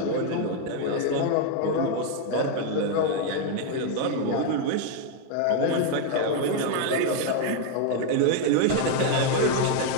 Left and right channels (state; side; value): different; both; correlation 0.00